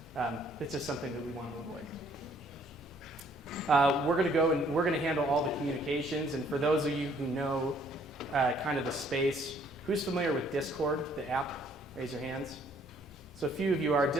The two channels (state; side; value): normal; both; correlation 0.63